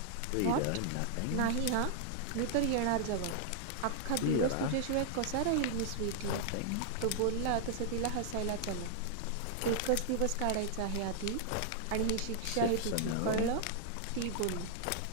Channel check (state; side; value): different; both; correlation 0.00